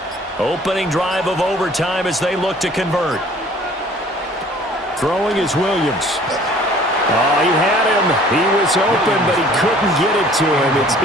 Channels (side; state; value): both; normal; correlation 0.53